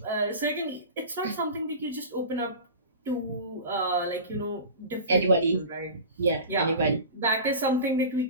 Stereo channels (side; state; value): both; inverted; correlation -0.33